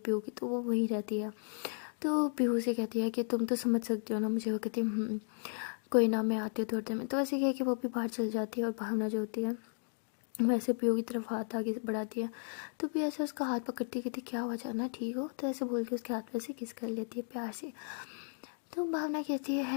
की, तो वो वही रहती है। तो पीहू से कहती है कि तुम तो समझ सकती हो ना मुझे। वो कहती है कोई ना मैं आती हूँ थोड़ी देर में। तो ऐसे कह के वो भी बाहर चल जाती है, और भावना जो होती है वैसे पीहू की तरफ हाथ आगे बढ़ाती है। तो भी ऐसे उसका हाथ पकड़ती कहती क्या हुआ जाना ठीक हो, तो ऐसे बोल के उसके हाथ पे से किस कर लेती है प्यार से। तो भावना कहती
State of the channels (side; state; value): right; silent; digital silence